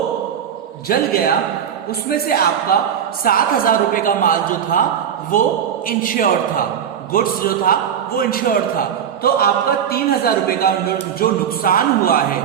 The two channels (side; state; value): left; quieter; 8.6 dB